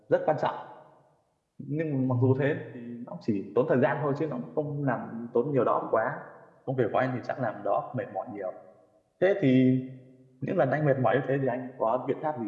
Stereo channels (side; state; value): both; identical; correlation 1.00